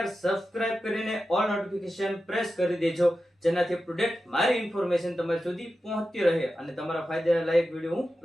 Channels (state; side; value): normal; both; correlation 0.92